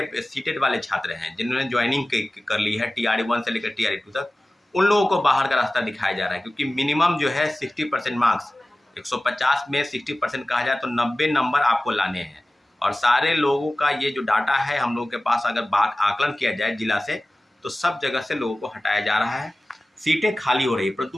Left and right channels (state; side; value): normal; both; correlation 0.97